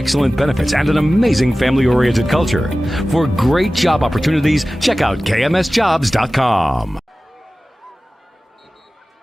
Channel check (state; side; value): normal; both; correlation 0.96